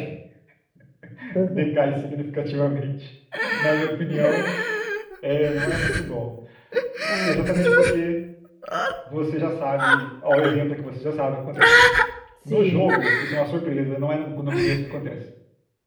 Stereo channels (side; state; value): both; identical; correlation 1.00